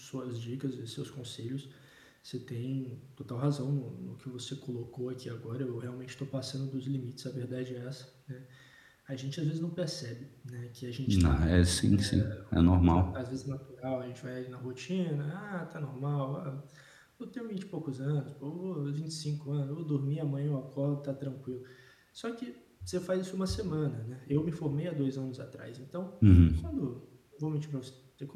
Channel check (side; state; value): both; identical; correlation 1.00